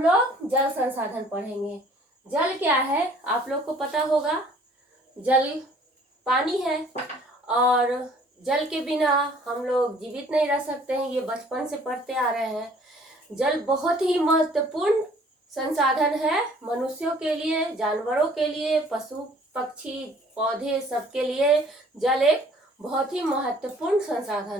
लोग जल संसाधन पढ़ेंगे। जल क्या है आप लोग को पता होगा। जल पानी है और जल के बिना हम लोग जीवित नहीं रह सकते हैं। ये बचपन से पढ़ते आ रहे हैं। जल बहुत ही महत्वपूर्ण संसाधन है मनुष्यों के लिए, जानवरों के लिए, पशु पक्षी पौधे सबके लिए जल एक बहुत ही महत्वपूर्ण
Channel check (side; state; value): both; normal; correlation 0.56